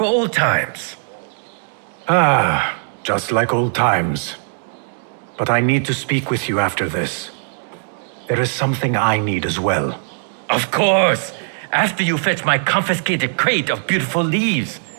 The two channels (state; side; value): silent; left; digital silence